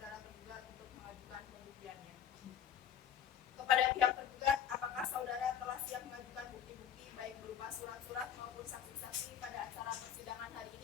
tergugat untuk mengajukan pembuktiannya. Kepada pihak tergugat, apakah saudara telah siap mengajukan bukti-bukti baik berupa surat-surat maupun saksi-saksi pada acara persidangan hari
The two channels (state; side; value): quieter; right; 9.1 dB